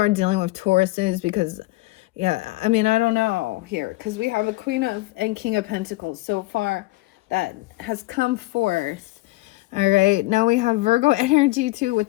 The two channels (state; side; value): quieter; right; 20.8 dB